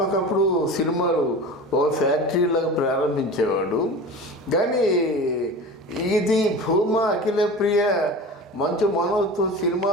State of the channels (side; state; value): both; normal; correlation 0.33